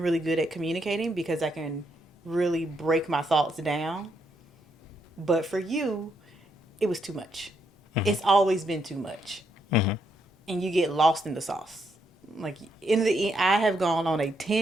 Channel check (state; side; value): normal; both; correlation 0.77